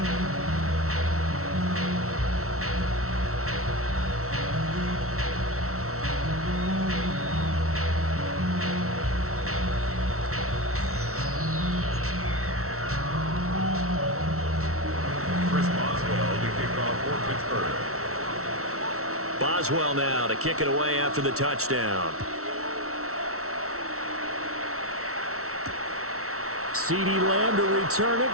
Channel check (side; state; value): left; late; 0.63 ms